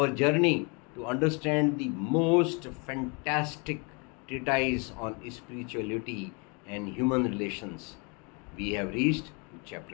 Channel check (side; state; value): right; quieter; 32.6 dB